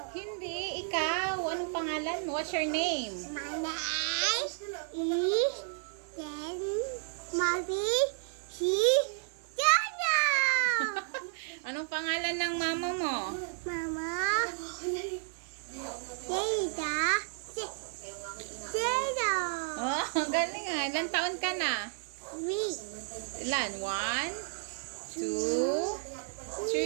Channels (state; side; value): silent; left; 56 dB below the other